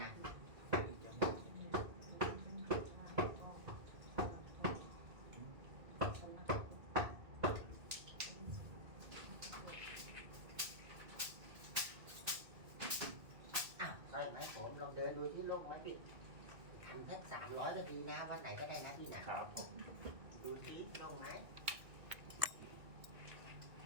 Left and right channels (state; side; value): late; left; 2.1 ms